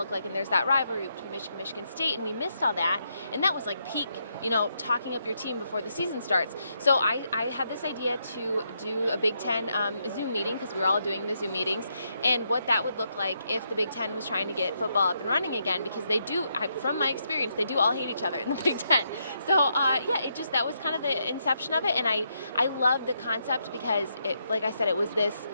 like. And there's that rivalry between Michigan State, and we missed all that. And that was like peak, talking up your team before the season starts. So I had this idea to do a Big Ten Zoom meeting, because we were all doing the Zoom meetings, and what that would look like if the Big Ten was trying to get football up and running again, because they do, from my experience, they do all hate each other in the Big Ten. So that was kind of the inception of it, and I loved the concept because like I said, it was this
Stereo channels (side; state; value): both; inverted; correlation -0.79